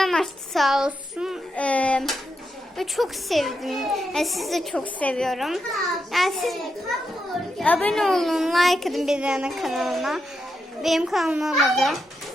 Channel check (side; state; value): both; normal; correlation 0.85